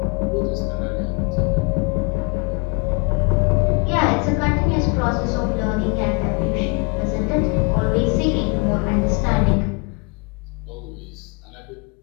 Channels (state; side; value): quieter; right; 32.7 dB